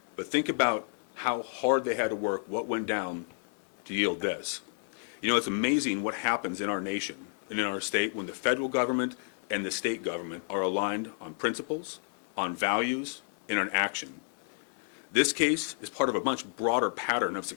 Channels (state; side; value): silent; right; 57 dB below the other